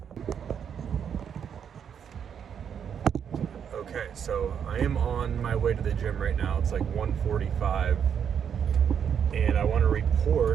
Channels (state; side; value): quieter; left; 7.9 dB